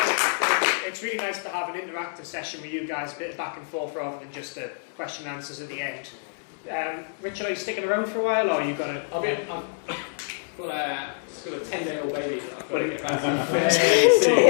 interactive session with you guys, a bit of back and forth rather than just the question and answers at the end. Richard, are you sticking around for a while, or are you going to... I've got a 10-day-old baby that I've got to get back to.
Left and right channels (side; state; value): right; silent; 61 dB below the other